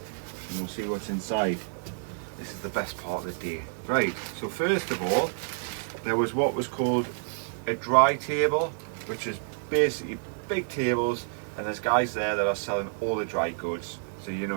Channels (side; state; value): left; silent; digital silence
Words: and we'll see what's inside. This is the best part of the day. Right, so first of all, there was what was called a dry table, which is basically big tables, and there's guys there that are selling all the dry goods. So you